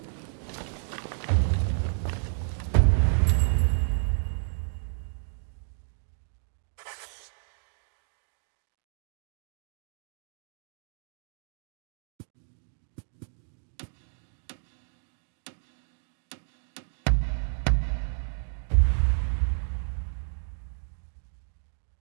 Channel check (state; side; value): silent; left; digital silence